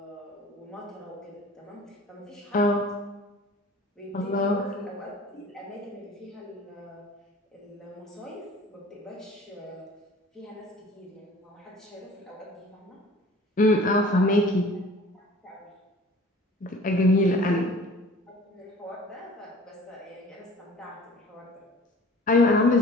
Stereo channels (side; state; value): both; normal; correlation 0.46